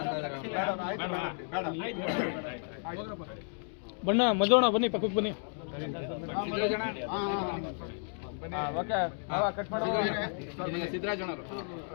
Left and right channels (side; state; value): right; silent; 56 dB below the other